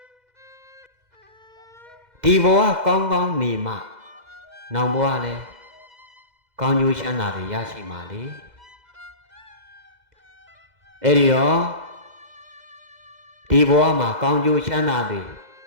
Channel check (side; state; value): left; late; 2.0 ms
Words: ဒီဘဝကောင်းနေမှနောင်ဘဝလည်းကောင်းကျိုးချမ်းသာတွေရရှိမှာလေအဲ့ဒီတော့ဒီဘဝမှာကောင်းကျိုးချမ်းသာတွေ